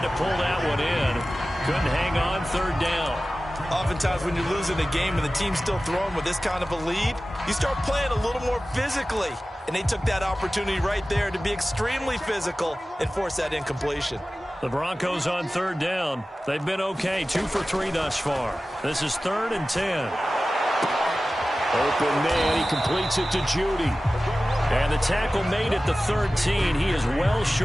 to pull that one in. Couldn't hang on 3rd down. Oftentimes when you're losing a game and the team's still throwing with this kind of a lead, you start playing a little more physically. And they took that opportunity right there to be extremely physical and force that incompletion. The Broncos on 3rd down. They've been okay, 2 for 3 thus far. This is 3rd and 10. Open man, he completes it to Judy. And the tackle made at the 13. He is well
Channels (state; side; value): normal; both; correlation 0.96